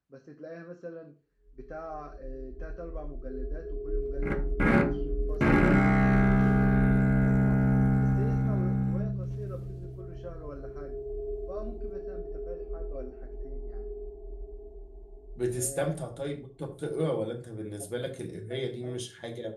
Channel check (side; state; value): both; identical; correlation 1.00